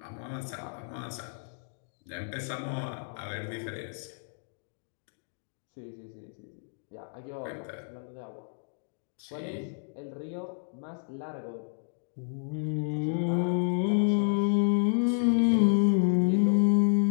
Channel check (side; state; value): right; silent; digital silence